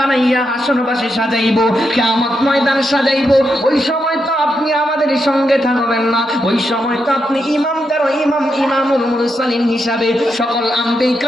হাসরবাসে সাজাইবো, কিয়ামত ময়দান সাজাইবো, ওই সময় তো আপনি আমাদের সঙ্গে থাকবেন না, ওই সময় তো আপনি ইমামদের ইমাম, ইমামুল মুরসালিন হিসাবে সকল আম্বিয়া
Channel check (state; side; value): normal; both; correlation 0.83